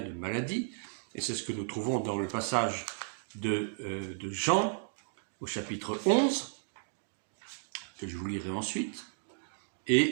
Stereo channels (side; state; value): left; silent; digital silence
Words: de maladie, et c'est ce que nous trouvons dans le passage de Jean, au chapitre 11, que je vous lirai ensuite.